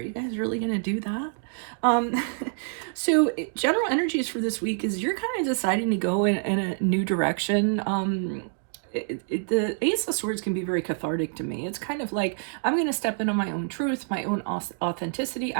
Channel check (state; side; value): silent; left; digital silence